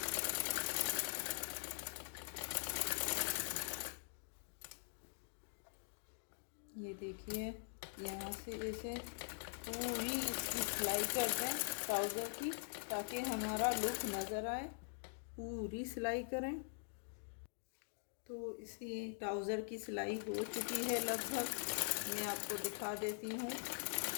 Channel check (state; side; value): silent; right; digital silence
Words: ये देखिए, यहाँ से ऐसे पूरी इसकी सिलाई कर दें ट्राउज़र की, ताकि हमारा लुक नज़र आए। पूरी सिलाई करें। तो इसी ट्राउज़र की सिलाई हो चुकी है लगभग, मैं आपको दिखा देती हूँ।